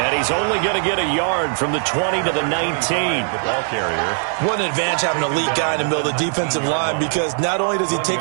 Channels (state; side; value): silent; left; 66 dB below the other